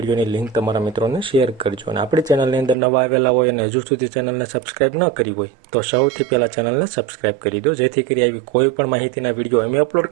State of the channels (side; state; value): left; drops out; at 2.8 s